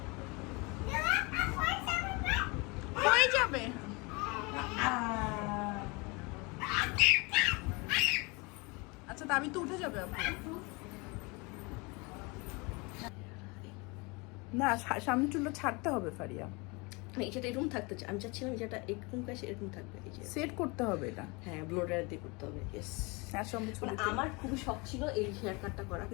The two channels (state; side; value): quieter; right; 27.8 dB